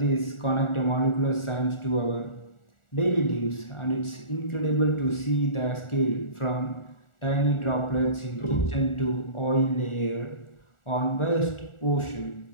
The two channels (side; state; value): right; late; 1.4 ms